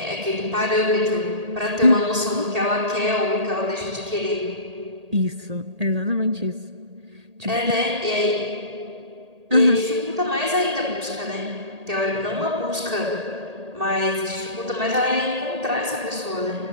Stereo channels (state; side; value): late; left; 1.8 ms